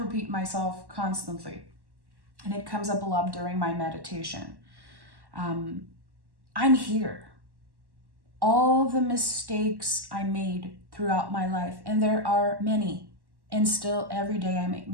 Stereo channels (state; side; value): late; left; 1.1 ms